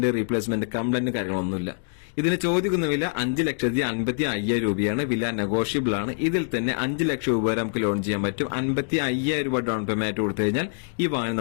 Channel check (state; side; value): silent; right; digital silence